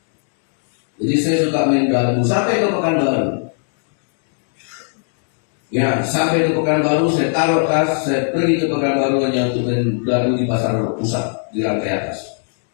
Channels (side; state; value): right; silent; 58 dB below the other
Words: Jadi saya suka main galu sampai ke Pekanbaru. Ya, sampai ke Pekanbaru saya taruh tas, saya pergi ke Pekanbaru hanya untuk main galu di pasar pusat di lantai atas.